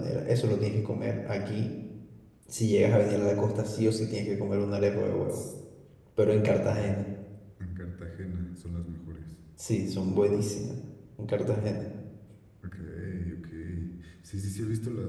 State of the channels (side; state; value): both; identical; correlation 1.00